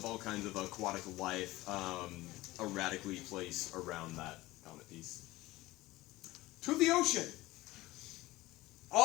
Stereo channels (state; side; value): quieter; right; 18.6 dB